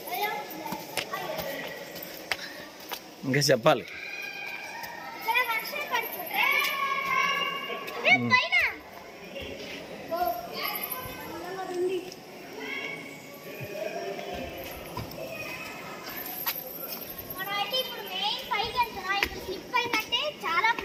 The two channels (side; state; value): both; identical; correlation 1.00